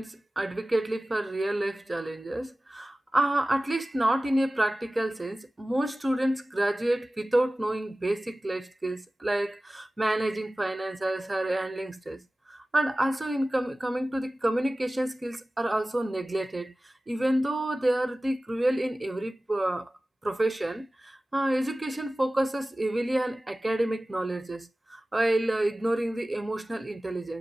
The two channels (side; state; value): both; normal; correlation 0.97